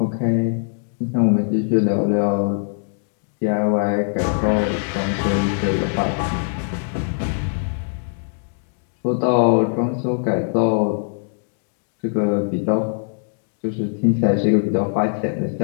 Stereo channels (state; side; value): silent; right; 64 dB below the other